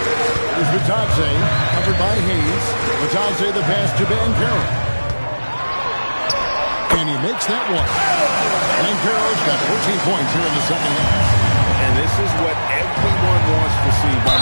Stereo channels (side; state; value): both; inverted; correlation -1.00